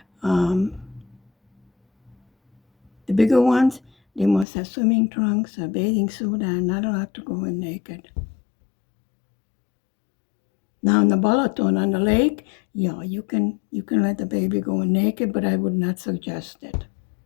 The bigger ones, they must have swimming trunks, a bathing suit, and not allowed to go in naked. Now in the Balaton on the lake, yeah, you can let the baby go in naked, but I would not suggest it.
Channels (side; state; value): right; drops out; at 4.5 s